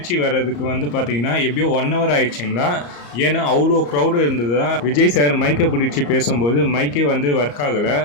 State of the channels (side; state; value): right; late; 34 ms